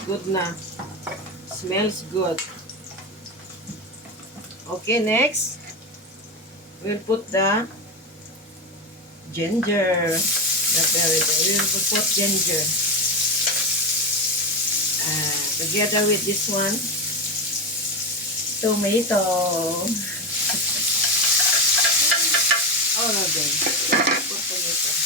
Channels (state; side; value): normal; both; correlation 0.14